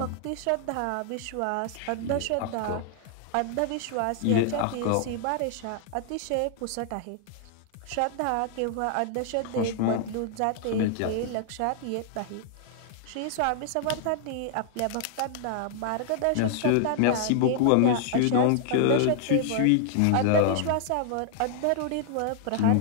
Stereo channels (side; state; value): both; different; correlation -0.01